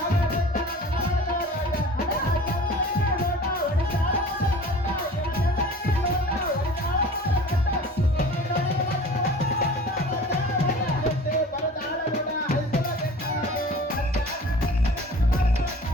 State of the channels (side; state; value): both; normal; correlation 0.42